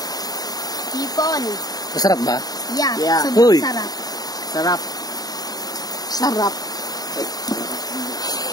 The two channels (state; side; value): late; right; 0.18 ms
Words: Hipon. Masarap ba? Yeah, Yeah. sobrang Uy. sarap. Sarap. Sarap.